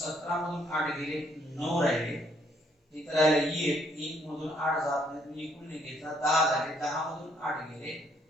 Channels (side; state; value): both; normal; correlation 0.69